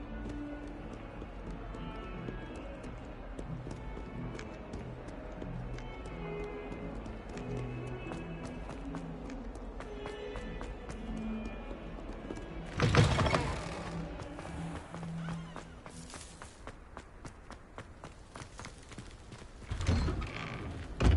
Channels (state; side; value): identical; both; correlation 1.00